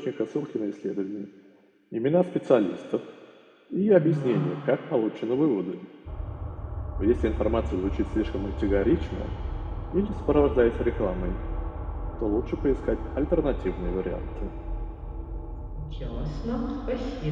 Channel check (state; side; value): identical; both; correlation 1.00